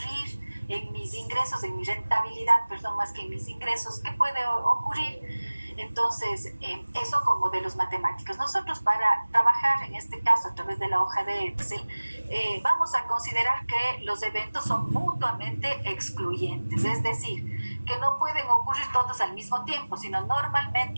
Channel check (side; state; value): both; inverted; correlation -1.00